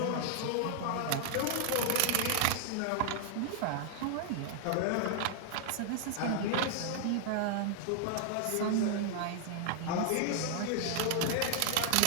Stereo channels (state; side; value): different; both; correlation 0.00